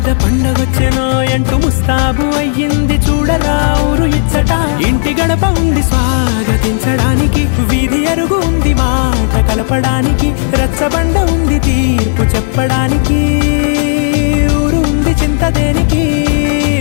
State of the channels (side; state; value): right; silent; digital silence